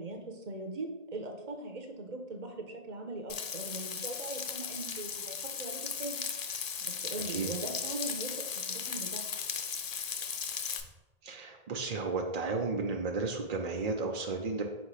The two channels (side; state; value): left; late; 1.8 ms